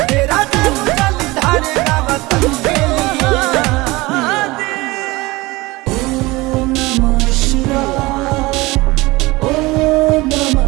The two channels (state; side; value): quieter; left; 21.5 dB